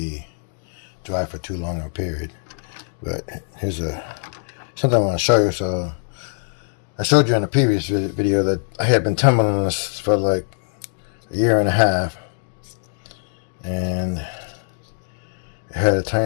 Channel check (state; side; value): silent; right; digital silence